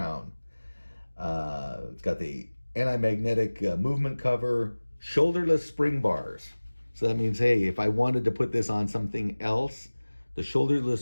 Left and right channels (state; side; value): inverted; both; correlation -1.00